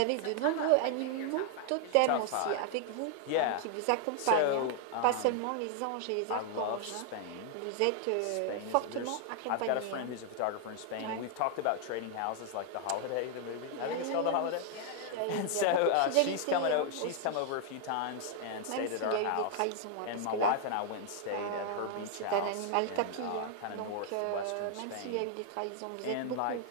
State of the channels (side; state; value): both; different; correlation 0.00